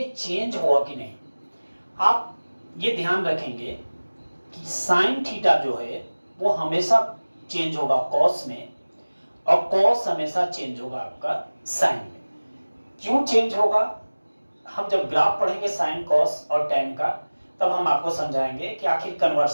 चेंज हुआ कि नहीं। आप ये ध्यान रखेंगे कि साइन थीटा जो है वो हमेशा चेंज होगा कॉस में और कॉस हमेशा चेंज होगा आपका साइन में। क्यों चेंज होगा, हम जब ग्राफ पढ़ेंगे साइन कॉस और टेन का तब हम आपको समझाएंगे कि आखिर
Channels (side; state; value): both; inverted; correlation -1.00